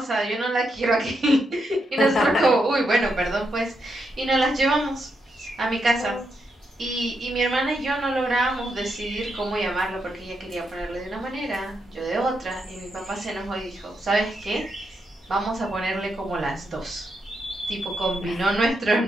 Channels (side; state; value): both; normal; correlation 0.82